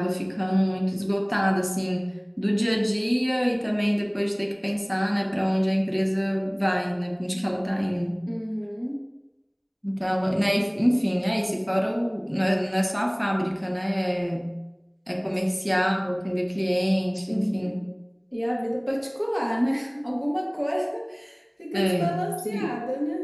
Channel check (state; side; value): identical; both; correlation 1.00